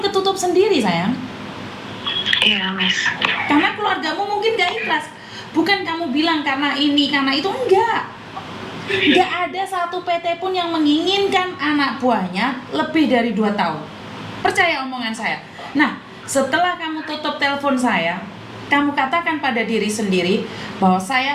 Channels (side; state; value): both; identical; correlation 1.00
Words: ketutup sendiri sayang. Iya, Miss. Karena keluargamu mungkin gak ikhlas. Bukan kamu bilang karena ini, karena itu, enggak. Gak ada satu PT pun yang menginginkan anak buahnya lebih dari 2 tahun. Percaya omongan saya. Nah, setelah kamu tutup telepon saya, kamu katakan pada diri sendiri bahwa